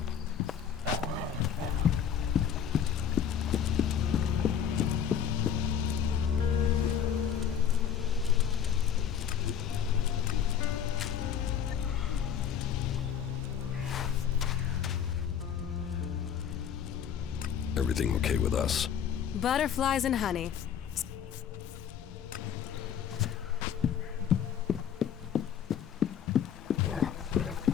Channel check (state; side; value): quieter; right; 8.4 dB